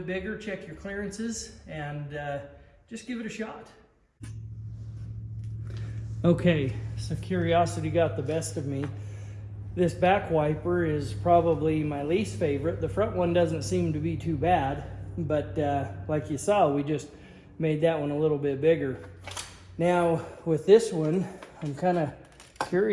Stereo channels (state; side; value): identical; both; correlation 1.00